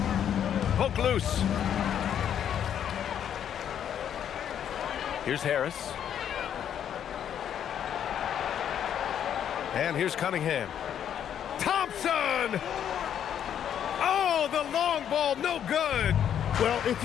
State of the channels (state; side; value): quieter; right; 9.4 dB